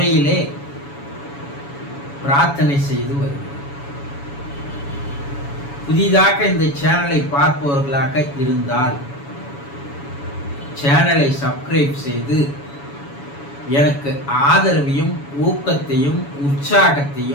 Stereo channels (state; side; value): late; right; 7.1 ms